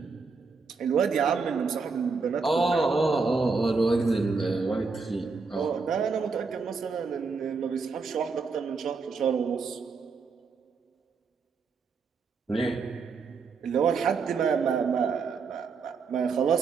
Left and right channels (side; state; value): left; quieter; 4.8 dB